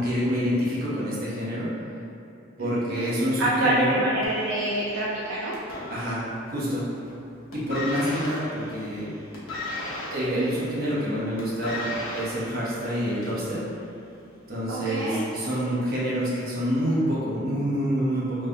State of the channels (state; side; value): normal; both; correlation 0.49